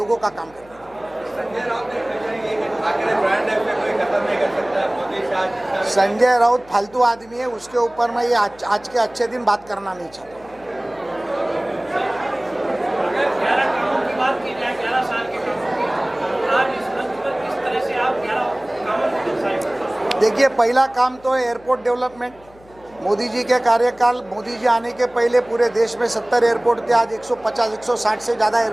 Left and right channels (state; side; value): noise; left; hum, 26 dB below the sound